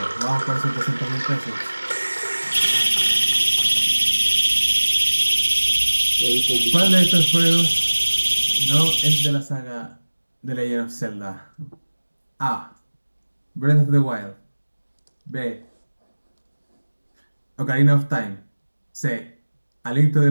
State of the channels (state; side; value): inverted; both; correlation -1.00